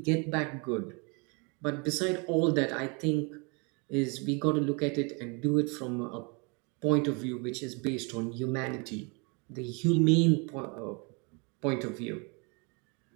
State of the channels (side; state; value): left; quieter; 32.4 dB